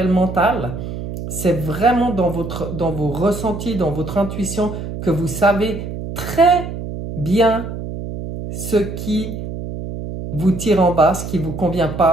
le mental. C'est vraiment dans vos ressentis, dans votre intuition, que vous savez très bien ce qui vous tire en bas, ce qui ne vous convient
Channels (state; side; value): noise; right; hum, 7 dB below the sound